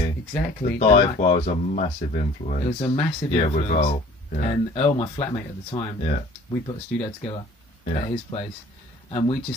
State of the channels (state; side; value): normal; both; correlation 0.50